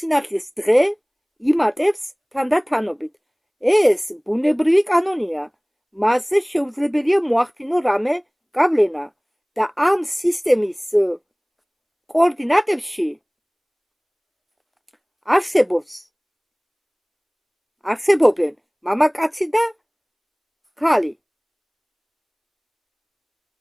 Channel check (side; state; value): both; identical; correlation 1.00